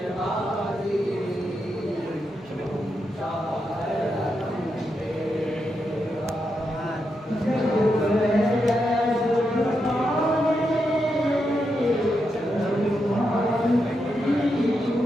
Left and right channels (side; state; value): both; normal; correlation 0.84